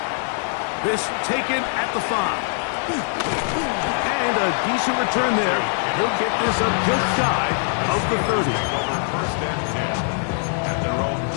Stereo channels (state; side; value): silent; right; 57 dB below the other